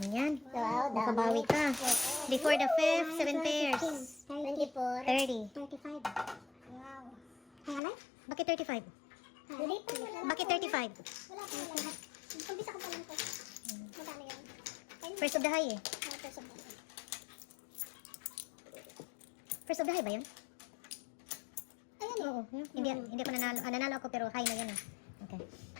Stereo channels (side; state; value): right; drops out; at 7.8 s